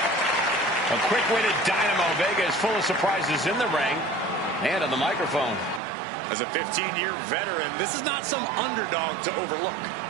A quick-witted Dynamo Vega is full of surprises in the ring and on the microphone. As a 15-year veteran, this is not some underdog to overlook.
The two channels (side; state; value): left; drops out; at 5.8 s